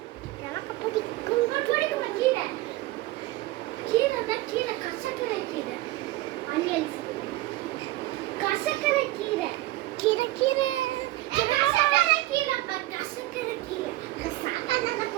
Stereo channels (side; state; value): left; quieter; 17.9 dB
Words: எனக்கு பிடிக்கும். கீரை கீரை கசக்கரை கீரை. கசக்கரை கீரை கீரை கீரை. சாப்பாடு